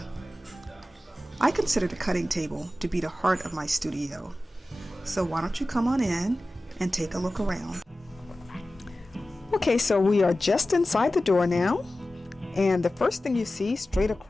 I consider the cutting table to be the heart of my studio, so why don't you come on in and take a look around. Okay, so we are just inside the door now. And the first thing you see straight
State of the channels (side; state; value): both; normal; correlation 0.95